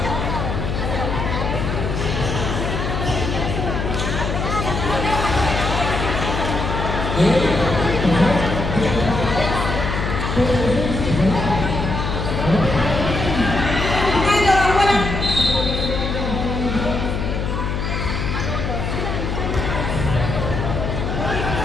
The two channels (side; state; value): left; noise; hum, 2 dB below the sound